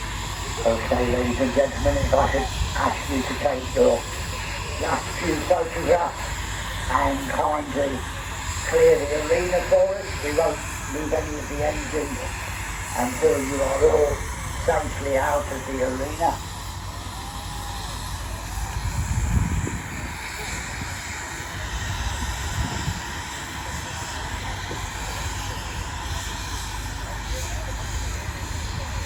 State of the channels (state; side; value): identical; both; correlation 1.00